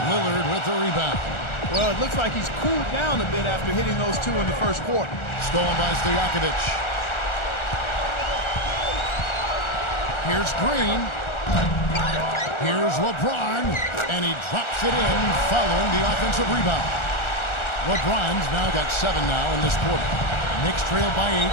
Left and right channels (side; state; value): right; late; 1.4 ms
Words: Lillard with the rebound. Well, it looks like he's cooled down a bit after hitting those two in the first quarter. Stolen by Stojakovic. Here's Green. Here's LeBron, and he drops it in following the offensive rebound. LeBron's now got 7 now in this quarter. Knicks trail by 8.